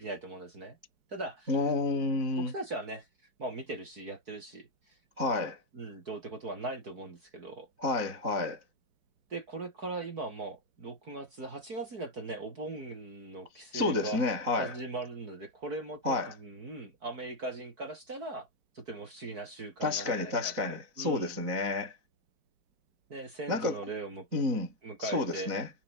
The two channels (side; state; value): left; late; 4.6 ms